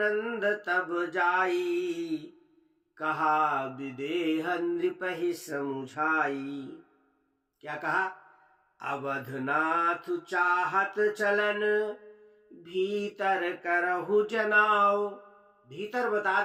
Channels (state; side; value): identical; both; correlation 1.00